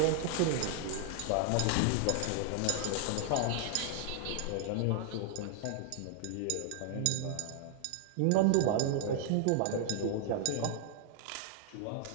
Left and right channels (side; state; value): both; different; correlation 0.00